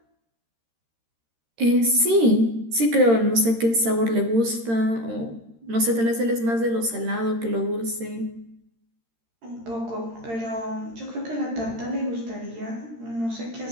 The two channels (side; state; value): left; late; 13 ms